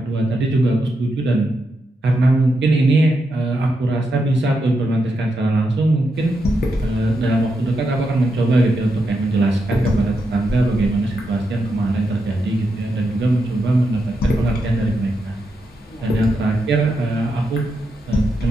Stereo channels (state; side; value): normal; both; correlation 0.84